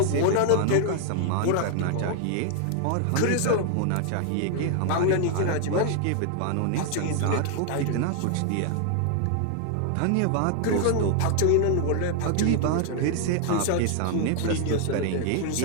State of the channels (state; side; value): different; both; correlation 0.00